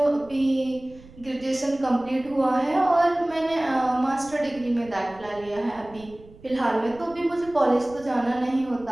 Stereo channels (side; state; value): right; noise; rumble, 22 dB below the sound